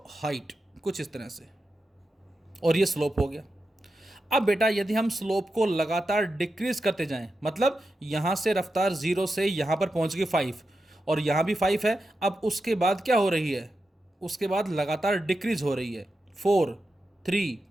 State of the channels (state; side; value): normal; both; correlation 0.89